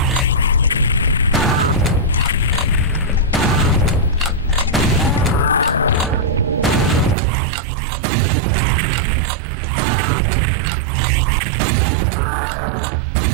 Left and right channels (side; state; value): left; drops out; at 7.2 s